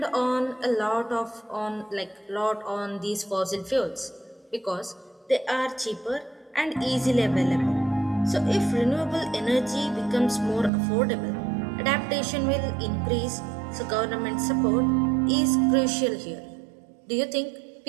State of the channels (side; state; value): left; drops out; at 10.7 s